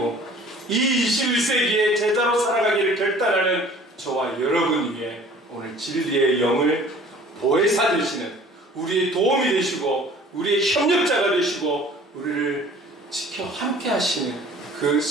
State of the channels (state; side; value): normal; both; correlation 0.49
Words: 이 21세기에 제자로 살아가기를 결단하는 저와 여러분 위해 오늘 진리의 영을 보혜사 되시는, 우리의 도움이 되시고 우리의 협력자가 되시고 우리를 지켜 함께 하시는 그